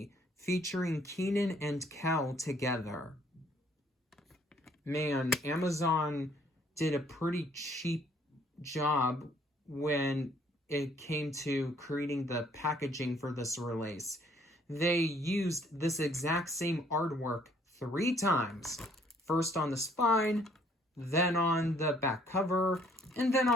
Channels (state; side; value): normal; both; correlation 0.62